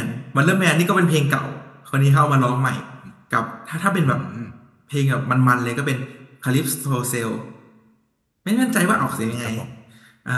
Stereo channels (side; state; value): both; identical; correlation 1.00